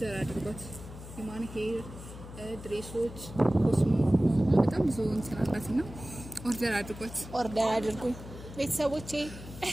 አድርጓት። የማን ሄር ድሬሶች፣ ኮስሞ በጣም ብዙ እንትን አላትና ኦርደር አድርጓት። ኦርደር አድርጉኝ ቤተሰቦቼ።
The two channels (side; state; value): left; noise; hum, 13 dB below the sound